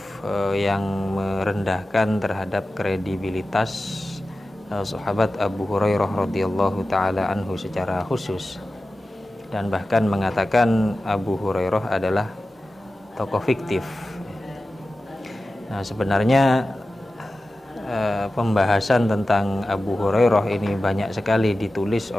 yang merendahkan terhadap kredibilitas sahabat Abu Hurairah radhiyallahu taala anhu secara khusus, dan bahkan mengatakan Abu Hurairah adalah tokoh fiktif. Nah, sebenarnya pembahasan tentang Abu Hurairah ini banyak sekali ditulis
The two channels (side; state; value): both; normal; correlation 0.94